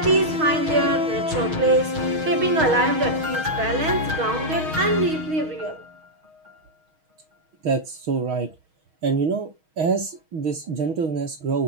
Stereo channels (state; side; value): late; left; 6.3 ms